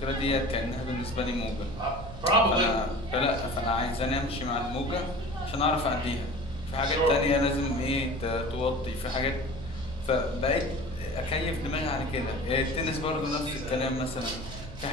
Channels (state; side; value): noise; right; hum, 14 dB below the sound